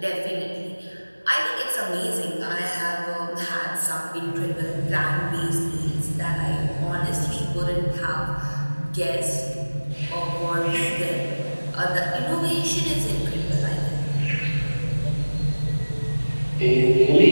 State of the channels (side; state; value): both; inverted; correlation -1.00